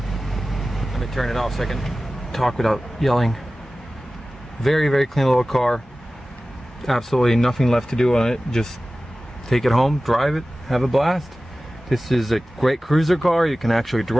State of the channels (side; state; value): both; normal; correlation 0.96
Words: Let me turn it off so I can talk without yelling. Very clean little car. Absolutely nothing left to do on it. Just take it home, drive it, have a blast. This is a great cruiser car. You can actually